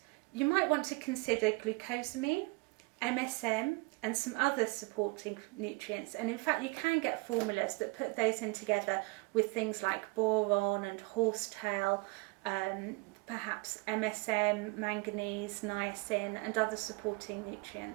you might want to consider glucosamine, MSM, and some other supporting nutrients. And in fact, you can get formulas that put those in together with things like boron and horsetail, perhaps MSM, manganese, niacin, and other supporting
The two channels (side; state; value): left; quieter; 27.4 dB